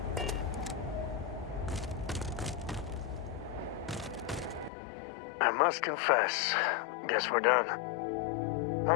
I must confess, guess we're done. I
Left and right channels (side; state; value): right; drops out; at 4.7 s